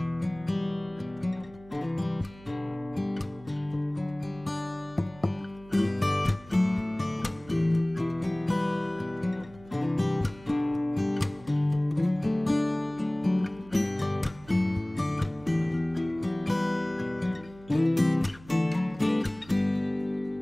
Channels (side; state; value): right; noise; hum, 22 dB below the sound